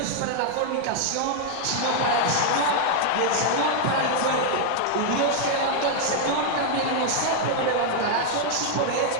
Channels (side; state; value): both; different; correlation 0.00